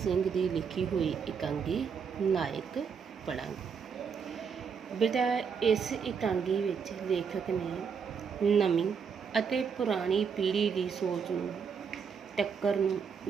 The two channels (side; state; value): left; quieter; 6.3 dB